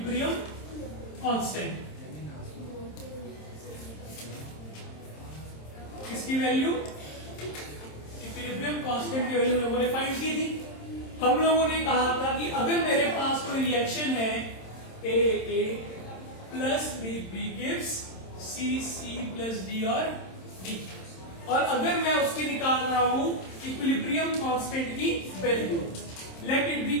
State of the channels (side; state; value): right; late; 27 ms